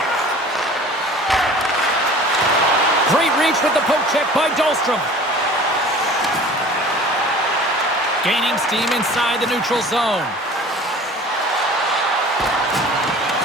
Great reach with the poke check by Dahlstrom. Gaining steam inside the neutral zone.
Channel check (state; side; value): normal; both; correlation 0.44